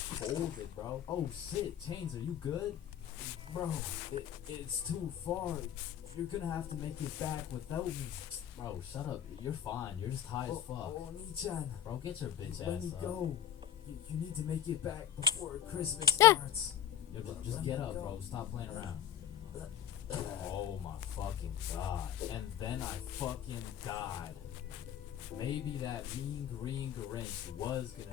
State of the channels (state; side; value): quieter; right; 10.4 dB